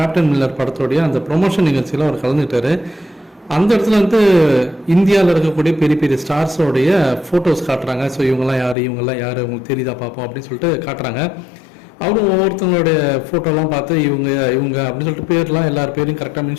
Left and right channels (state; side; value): drops out; right; at 8.8 s